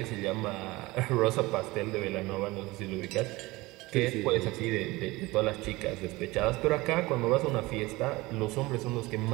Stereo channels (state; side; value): quieter; left; 21.1 dB